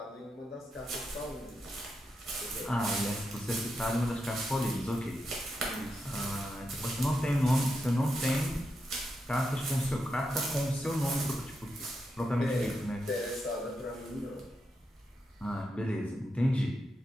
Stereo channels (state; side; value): normal; both; correlation 0.85